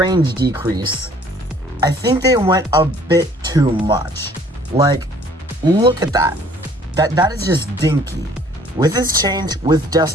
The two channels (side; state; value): both; normal; correlation 0.56